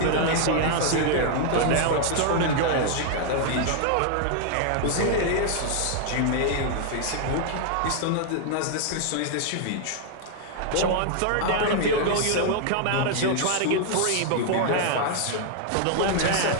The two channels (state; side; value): different; both; correlation 0.00